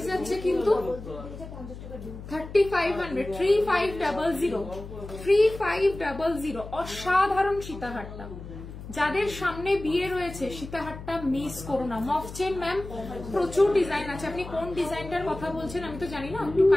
যাচ্ছে কিন্তু 3500, 3500। অসাধারণ সীতাহারটা। যাদের সামনে বিয়ে রয়েছে সীতাহারটা মিস করো না। মফ চেন ম্যাম প্রচুর ডিজাইন আছে, আপনি কোন ডিজাইনটার কথা বলছেন আমি তো জানি না, একটু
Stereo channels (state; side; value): noise; left; hum, 12 dB below the sound